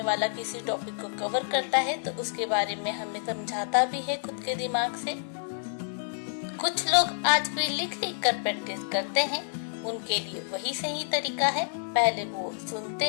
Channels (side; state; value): right; silent; digital silence